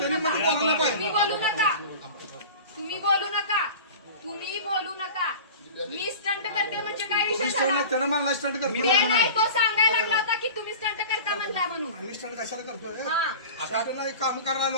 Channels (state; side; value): inverted; both; correlation -0.37